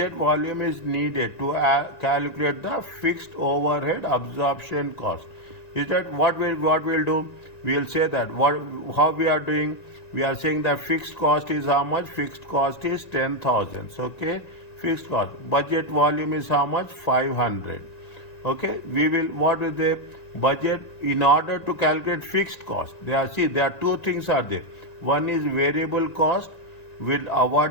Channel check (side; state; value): right; late; 1.9 ms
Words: volume is needed to calculate the fixed overhead absorption cost? Is that what we'll do? We'll say that how we are doing. We are saying that fixed cost is how much? Fixed cost is 10,000. Okay, fixed cost. Budget volume is how much? 500. Okay, we will, what is the budget in order to calculate fixed cost? There are two things are there. One is variable cost, will